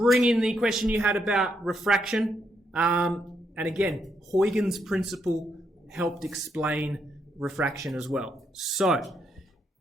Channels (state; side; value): normal; both; correlation 0.78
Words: in the question you had about refraction. And again, Huygens' principle helped explain refraction as well. So,